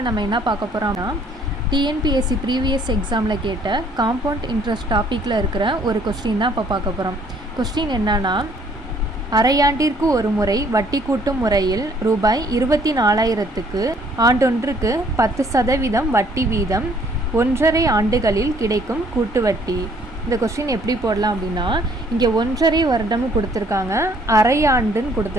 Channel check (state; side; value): normal; both; correlation 0.62